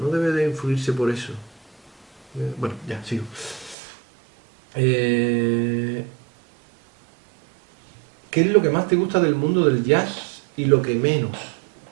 debe de influirse por eso. Bueno, ya, sigo. Eh, ¿Qué es lo que más te gusta del mundo del jazz y lo que menos?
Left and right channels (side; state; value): left; drops out; at 3.8 s